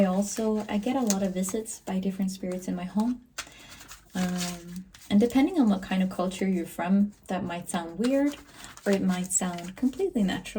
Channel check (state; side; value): identical; both; correlation 1.00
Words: get a lot of visits by different spirits in my home. And depending on what kind of culture you're from, that might sound weird, or it might sound completely